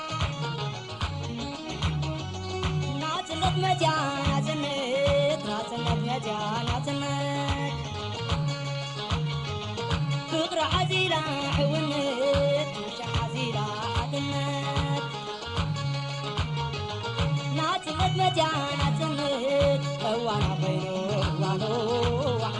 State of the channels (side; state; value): right; noise; rumble, 25 dB below the sound